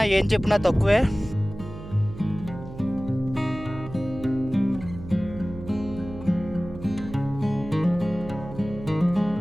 ఏం చెప్పినా తక్కువే.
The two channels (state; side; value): noise; right; hum, 13 dB below the sound